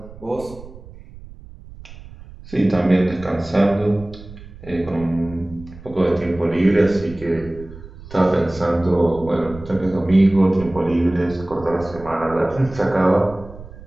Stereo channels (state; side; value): noise; right; rumble, 17 dB below the sound